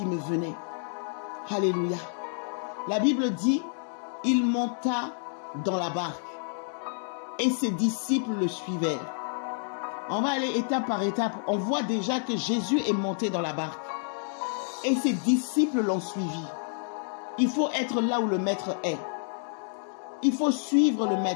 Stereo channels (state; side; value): silent; right; digital silence